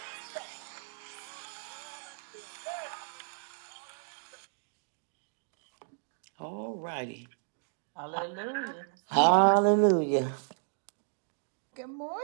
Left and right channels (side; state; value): left; silent; digital silence